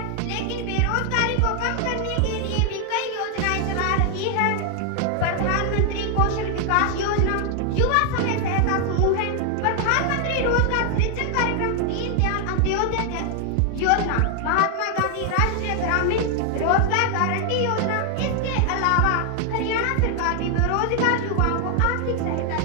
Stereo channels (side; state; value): both; different; correlation 0.00